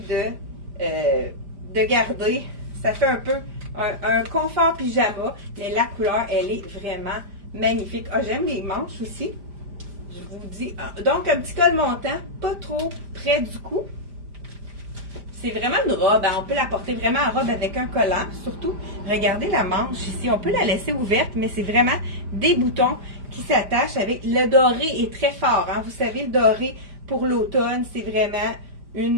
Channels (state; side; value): late; left; 5.0 ms